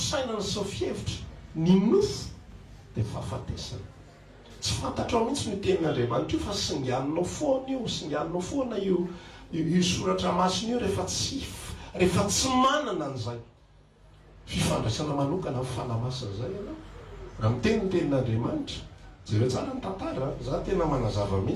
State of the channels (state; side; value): identical; both; correlation 1.00